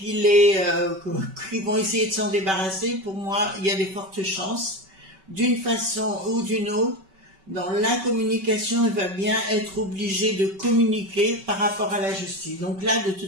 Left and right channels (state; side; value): late; left; 5.2 ms